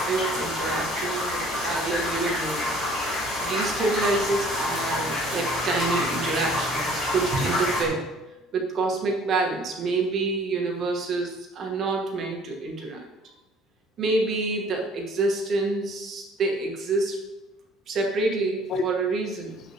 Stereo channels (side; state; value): both; normal; correlation 0.54